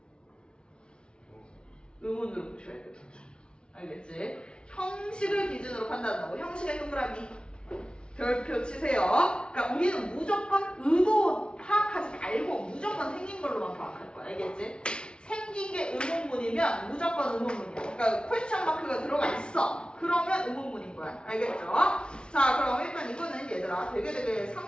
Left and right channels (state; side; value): late; right; 0.056 ms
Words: 의문으로 보셔야 돼요. 알겠지? 형식을 기준으로 판단한다고. 형식의 동그라미 별표 치세요. 그러니까 우리는 무조건 의도 파악하지 말고 무조건 생긴 걸로만 파악할 거야. 알겠지? 생긴 게 의문문이면 무조건 의문문이야. 그러니까 퀘스천 마크가 들어가 있어. 그러면 의문문인 거야. 알겠죠? 자, 그럼 일단 이거는 얘들아 되게